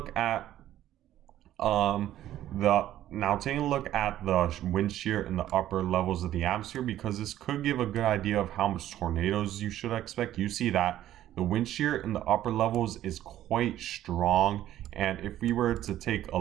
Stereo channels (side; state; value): left; quieter; 12.8 dB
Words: at the wind shear in the upper levels of the atmosphere, because this could give a good idea of how much tornadoes you should expect. You see that the wind shear in the upper levels is quite strong, and if we were to take a